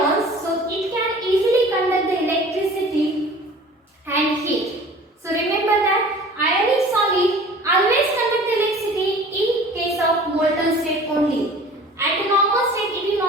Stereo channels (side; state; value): both; normal; correlation 0.45